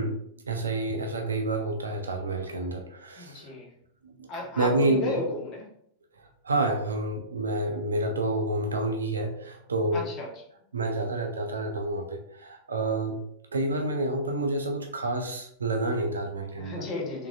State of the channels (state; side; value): inverted; both; correlation -0.36